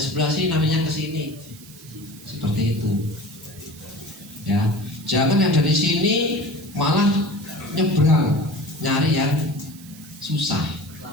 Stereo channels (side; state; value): right; noise; hiss, 20 dB below the sound